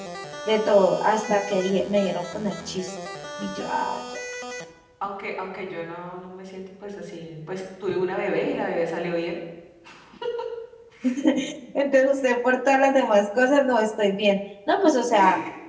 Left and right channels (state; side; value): identical; both; correlation 1.00